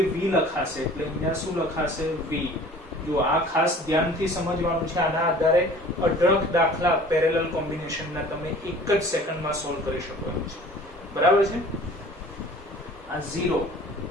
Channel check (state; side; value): normal; both; correlation 0.47